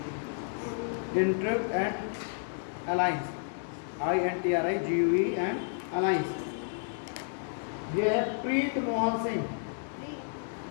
intrigue and alliance, I-N-T-R-I-G-U-E and alliance. ये है Preet Mohan Singh,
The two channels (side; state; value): right; silent; digital silence